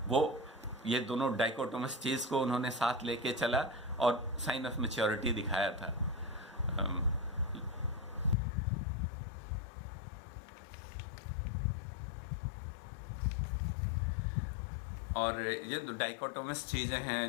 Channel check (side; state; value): right; drops out; at 8.3 s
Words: वो ये दोनों डाइकोटोमस चीज़ को उन्होंने साथ लेके चला और साइन ऑफ मैच्योरिटी दिखाया था। और ये जो डाइकोटोमस चीज़ें